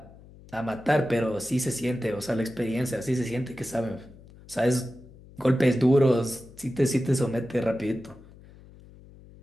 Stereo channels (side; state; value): left; noise; hum, 21 dB below the sound